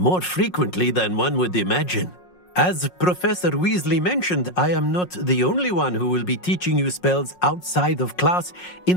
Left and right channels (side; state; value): right; late; 5.5 ms